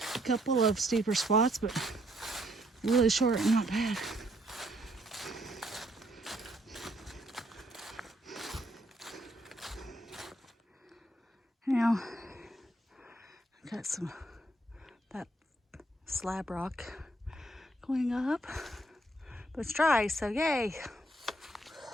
A couple of steeper spots, but really short and not bad. Now, got that slab rock going up, but it's dry, so yay.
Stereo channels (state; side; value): normal; both; correlation 0.69